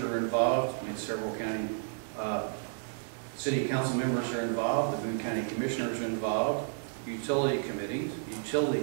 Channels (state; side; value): silent; left; digital silence